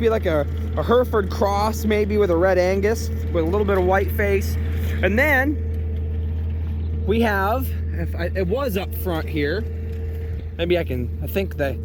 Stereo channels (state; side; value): identical; both; correlation 1.00